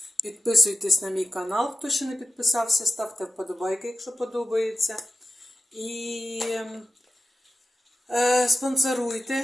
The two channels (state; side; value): normal; both; correlation 0.92